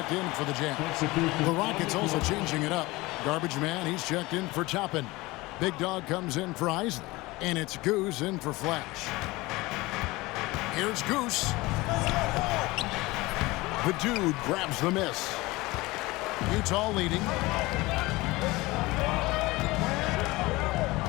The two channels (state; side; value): quieter; right; 21.2 dB